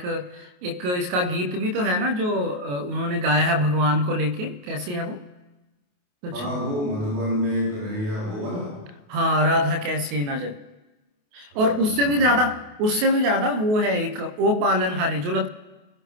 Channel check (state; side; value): late; left; 28 ms